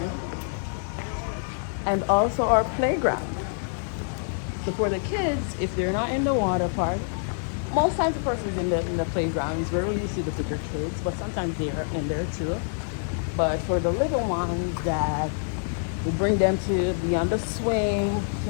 And also our playground. So for the kids, if they're not in the water park, most times the person's in the playgrounds. Rarely you see the bigger kids, but sometimes they're in there too. But for the little ones, that we bring them to be on the swing to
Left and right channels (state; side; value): silent; right; digital silence